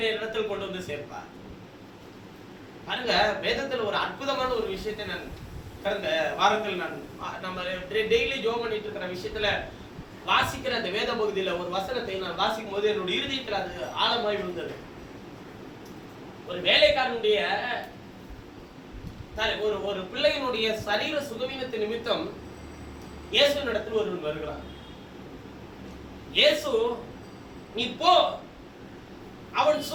இடத்தில் கொண்டு வந்து சேர்ப்பார். பாருங்க, வேதத்துல ஒரு அற்புதமான ஒரு விஷயத்தை நான் கடந்த வாரத்தில் நம்ம டெய்லி ஜோம் பண்ணிட்டு இருக்கிற விஷயத்துல வாசிக்கிற அந்த வேத பகுதியில ஒரு வசனத்தை நான் வாசிக்கும் போது என்னுடைய இருதயத்தில் அது ஆழமாய் விழுந்தது. ஒரு வேலைக்காரனுடைய ஒரு பிள்ளையினுடைய சரீர சுகவீனத்தின் நிமித்தம் இயேசு இடத்தில் ஒருவன் வருகிறான். இயேசு நீ போ, அவன்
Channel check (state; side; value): identical; both; correlation 1.00